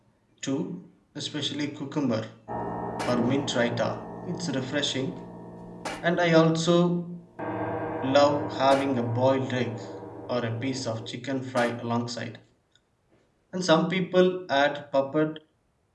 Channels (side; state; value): both; identical; correlation 1.00